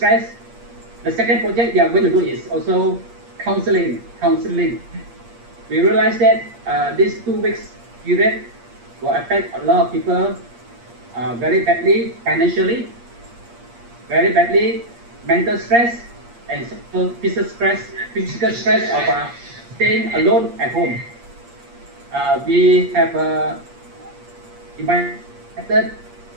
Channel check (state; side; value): late; left; 8.5 ms